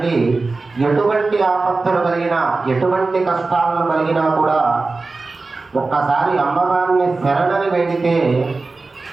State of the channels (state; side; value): quieter; left; 3.7 dB